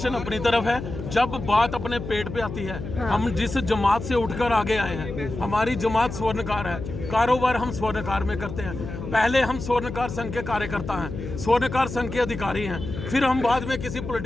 अपनी तरफ है, जब बात अपने पेट पे आती है। हाँ। हम जिस जमात से उठकर आगे आए हैं, हमारी जमात स्वर्णकार है, कारोबार हम स्वर्णकार में करते हैं। पहले हम स्वर्णकार संघ के कार्यकर्ता हैं, स्वर्णकार संघ के अधिकारी हैं, फिर हम बाद में किसी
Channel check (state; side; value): noise; left; hum, 8 dB below the sound